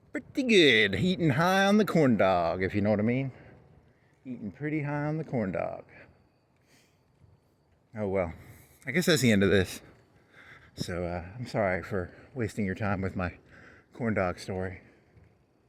Pretty good. Eating high on the corn dog, if you know what I mean. Eating pretty high on the corn dog. Oh well, I guess that's the end of this. So I'm sorry for wasting your time with my corn dog story.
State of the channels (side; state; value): both; identical; correlation 1.00